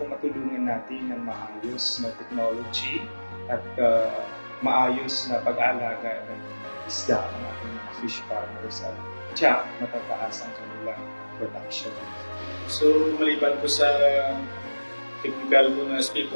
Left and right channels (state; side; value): inverted; both; correlation -1.00